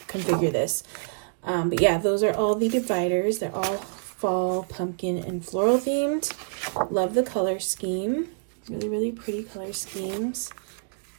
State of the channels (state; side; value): silent; left; digital silence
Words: configure this. But yeah, those are all the dividers. They're all fall, pumpkin, and floral themed. Love the color scheme. Really pretty color schemes.